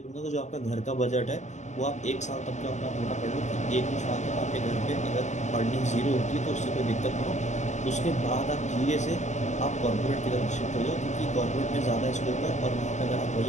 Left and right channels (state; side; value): late; right; 0.34 ms